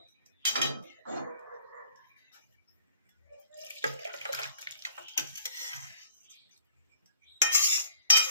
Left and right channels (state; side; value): inverted; both; correlation -0.53